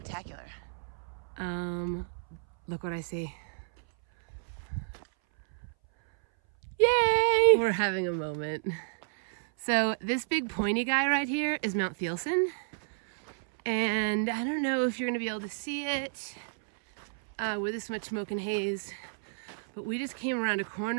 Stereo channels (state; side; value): silent; left; 57 dB below the other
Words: Look what I see. Yay! We're having a moment. So this big pointy guy right here is Mount Thielsen. And I don't know if you're gonna be able to see it with this much smoke and haze, but we just came around a